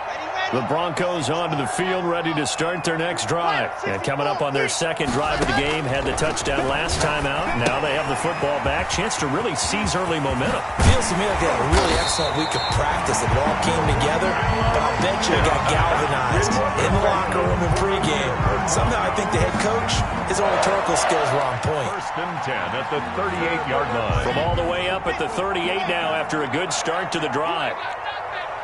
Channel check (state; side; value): identical; both; correlation 1.00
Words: The Broncos onto the field, ready to start their next drive. And coming up on their 2nd drive of the game, had the touchdown last time out. Now they have the football back. Chance to really seize early momentum. Feels to me like they had a really excellent week of practice. It all came together, but I'll bet you it got galvanized in the locker room in pregame. Somehow I think the head coach, his oratorical skills were on point. 1st and 10 at the 38-yard line. From all the way up at the 38 now after a good start to the drive.